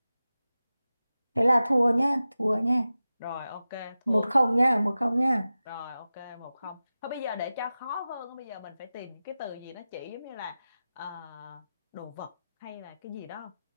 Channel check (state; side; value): inverted; both; correlation -0.94